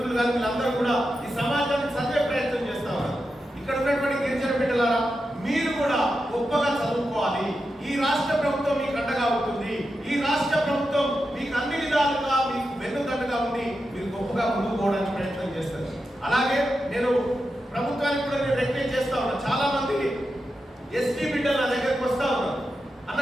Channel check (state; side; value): normal; both; correlation 0.89